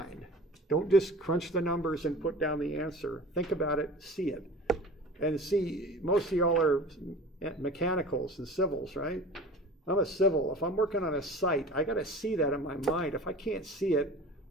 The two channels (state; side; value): normal; both; correlation 0.39